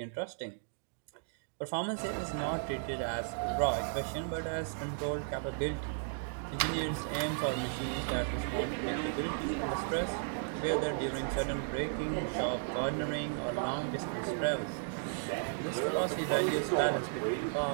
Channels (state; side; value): silent; left; digital silence